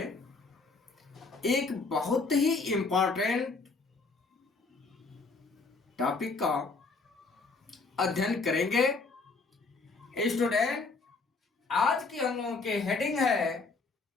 एक बहुत ही इम्पोर्टेंट टॉपिक का अध्ययन करेंगे। स्टूडेंट, आज की हम लोगों की हेडिंग है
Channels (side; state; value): right; quieter; 4.1 dB